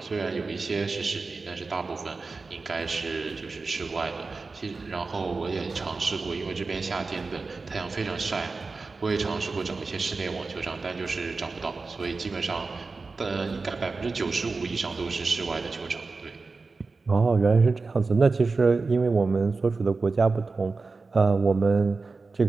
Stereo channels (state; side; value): quieter; left; 4.0 dB